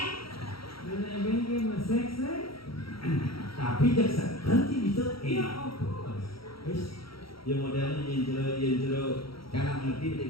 Ini bengkel Tapi cek segan sih bisa. Iya, of course. Wis, yang modelnya yang jero jangan ngerti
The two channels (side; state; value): right; late; 0.75 ms